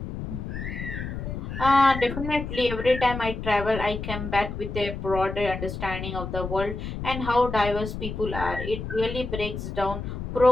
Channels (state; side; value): noise; left; rumble, 6 dB below the sound